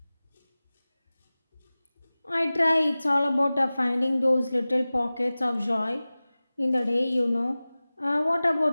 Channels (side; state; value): both; inverted; correlation -0.98